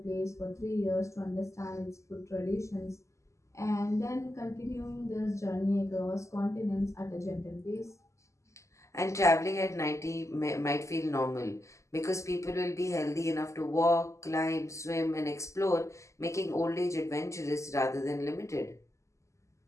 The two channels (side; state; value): right; late; 0.14 ms